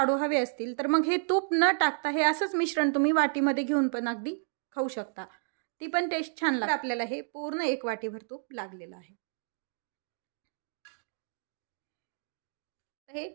हवे असतील तर मग हे तूप न टाकता हे असंच मिश्रण तुम्ही वाटीमध्ये घेऊन पण अगदी खाऊ शकता. ती पण टेस्ट छान लागते. आपल्याला हे पूर्ण 1 वाटीभर तूप लागलेलं आहे. हे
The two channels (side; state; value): left; silent; digital silence